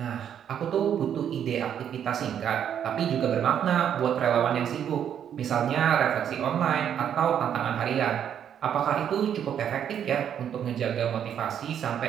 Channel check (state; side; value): quieter; left; 9.1 dB